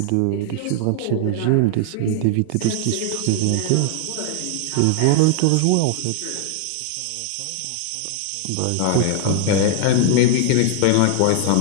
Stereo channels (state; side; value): different; both; correlation 0.00